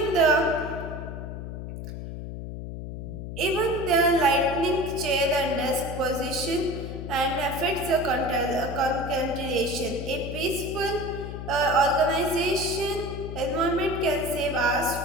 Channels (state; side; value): noise; left; hum, 8 dB below the sound